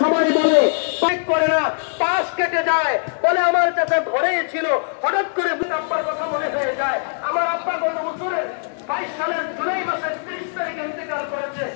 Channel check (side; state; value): right; silent; digital silence